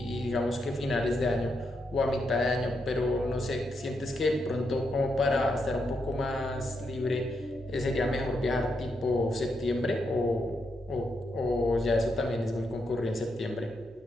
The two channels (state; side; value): normal; both; correlation 0.81